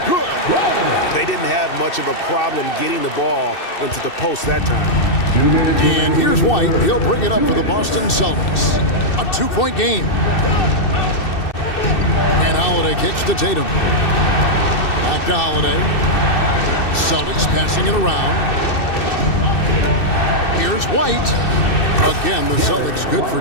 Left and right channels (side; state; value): right; late; 2.6 ms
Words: good. They didn't have much of a problem getting the ball into the post that time. And here's White. He'll bring it up for the Boston Celtics. A 2-point game. And Holiday kicks to Tatum. Back to Holiday. Celtics passing it around. Here's White. Again, the Celtics good for